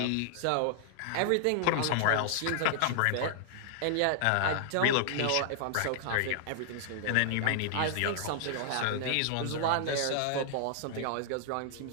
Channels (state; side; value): different; both; correlation -0.01